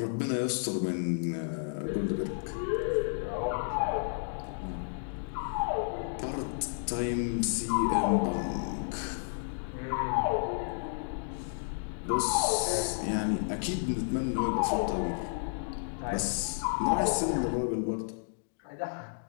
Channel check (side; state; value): right; silent; digital silence